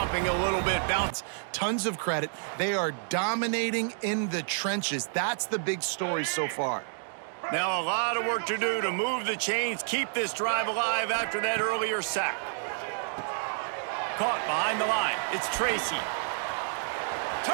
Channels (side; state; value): left; silent; 58 dB below the other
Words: a little bit? Bounce. Tons of credit. They are dominating in the trenches. That's the big story so far. Now a lot of work to do to move the chains, keep this drive alive after that earlier sack. Caught behind the line. It's Tracy.